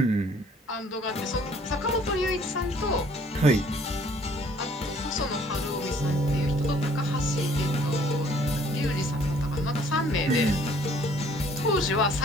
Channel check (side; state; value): both; normal; correlation 0.58